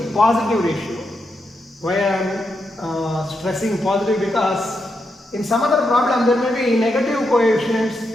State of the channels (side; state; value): both; normal; correlation 0.84